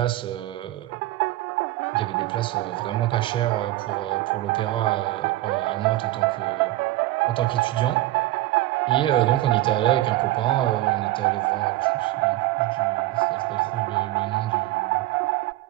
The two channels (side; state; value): left; quieter; 16.3 dB